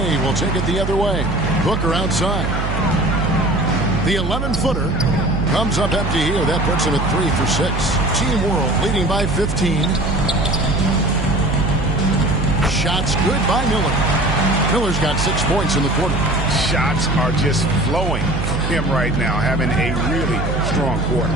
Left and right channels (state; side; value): noise; right; hum, 2 dB below the sound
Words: will take it the other way. Booker outside. The 11-footer comes up empty here. That puts him at 3 for 6. Team World leading by 15. Shots good by Miller. Miller's got 6 points in the quarter. Shots are just flowing from him right now, having a really strong quarter.